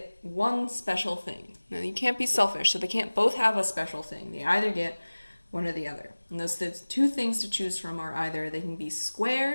one special thing. Now, you can't be selfish, so they can't both have a special thing. They either get one or the other. And those two things to choose from are either they can be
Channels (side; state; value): both; inverted; correlation -1.00